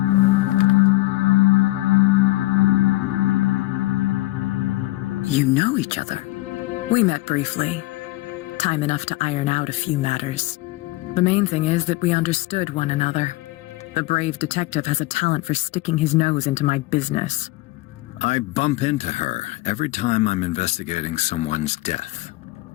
You know each other. We met briefly. Time enough to iron out a few matters. The main thing is that we understood one another. The brave detective has a talent for sticking his nose into my business. I bump into her every time I'm investigating someone's death.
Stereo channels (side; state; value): right; quieter; 19.6 dB